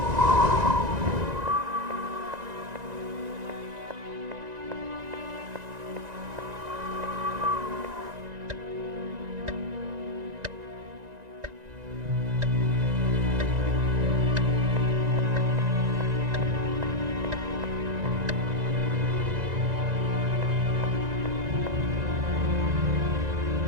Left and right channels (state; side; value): late; left; 1.9 ms